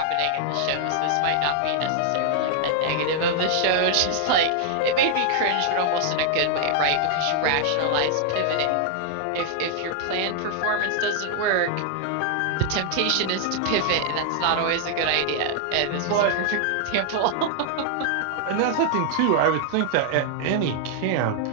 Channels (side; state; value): both; different; correlation 0.00